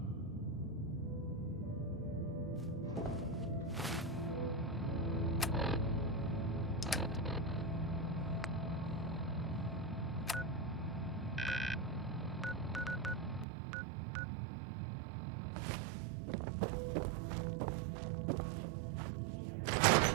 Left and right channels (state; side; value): drops out; left; at 13.5 s